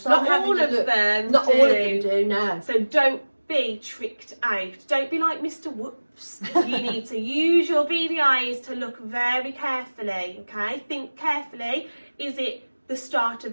I'm Not having all a of look. them. Not do. all of them do, no. So don't be tricked out. Don't be like Mr. Whoops. You need to use your beady eyes to look very carefully, okay? Think carefully. Is it the start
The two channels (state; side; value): inverted; both; correlation -1.00